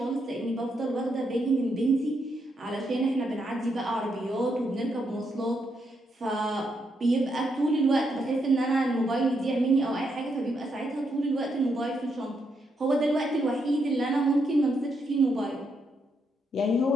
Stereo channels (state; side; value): normal; both; correlation 0.79